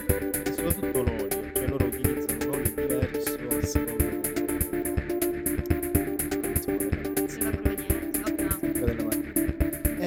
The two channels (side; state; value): both; identical; correlation 1.00